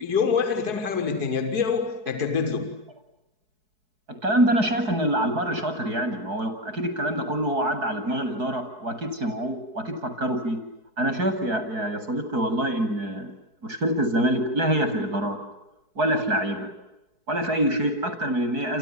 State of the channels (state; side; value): late; left; 4.7 ms